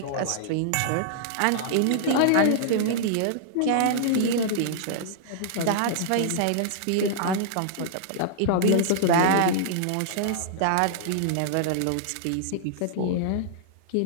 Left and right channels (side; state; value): both; different; correlation -0.01